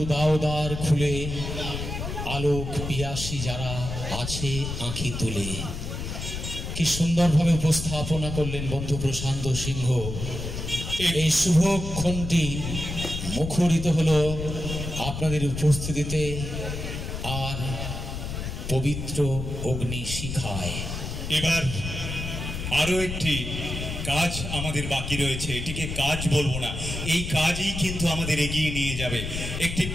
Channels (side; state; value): left; noise; rumble, 5 dB below the sound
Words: দাও দ্বার খুলে, আলোক পিয়াসী যারা আছে আঁখি তুলে। কি সুন্দরভাবে উপস্থাপনা করলেন বন্ধু প্রশান্ত সিংহ। এই শুভক্ষণটি মুখরিত হলো আপনাদের উপস্থিতিতে আর পবিত্র অগ্নি শিখায়। এবার আরো একটি কাজ আমাদের বাকি রয়েছে, এটিকে কাজ বলবো না, এই কাজই কিন্তু আমাদের এগিয়ে নিয়ে যাবে। একটি